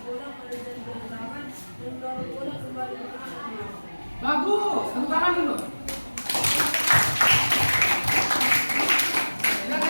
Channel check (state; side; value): inverted; both; correlation -1.00